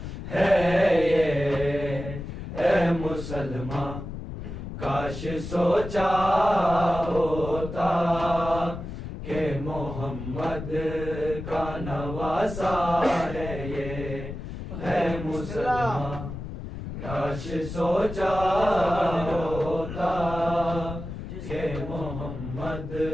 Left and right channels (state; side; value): noise; left; rumble, 8 dB below the sound